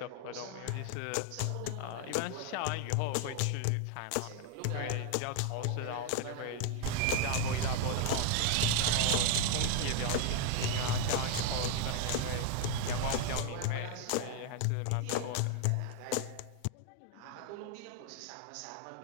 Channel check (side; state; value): both; different; correlation 0.01